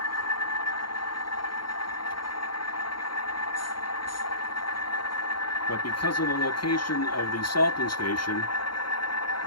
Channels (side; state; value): right; late; 0.72 ms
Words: But because of the location of the salting station,